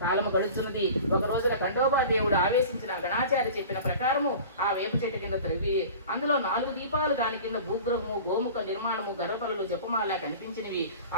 కాలము గడుస్తున్నది. ఒక రోజున ఖండోబా దేవుడు ఆవేశించిన గణాచార్య చెప్పిన ప్రకారము ఆ వేప చెట్టు కింద త్రవ్వి అందులో 4 దీపాలు, దాని కింద భూగ్రహము, గోముఖ నిర్మాణము, గర్భలు, జపమాల కనిపించినవి.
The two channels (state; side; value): inverted; both; correlation -0.39